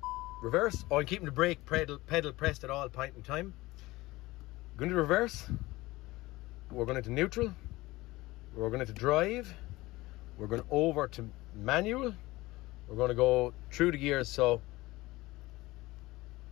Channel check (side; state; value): right; quieter; 19.6 dB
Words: reverse. Oh, I'm keeping the brake pedal pressed at all point in time. Going to reverse. We're going into neutral. We're going into drive. We're going over to manual. We're going to go through the gears. So